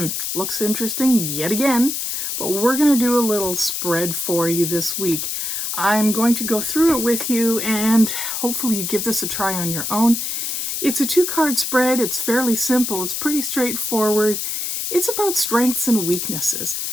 looks interesting yet again, but we're going to do a little spread for you this week. I'm going to go through it with you and hopefully you give this a try on your own. It's a 2-card spread. It's fairly simple. It's pretty straightforward. It's about strengths and weaknesses.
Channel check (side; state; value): left; noise; hiss, 3 dB below the sound